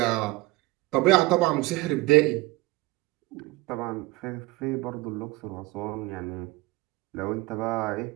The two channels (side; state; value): left; quieter; 21.4 dB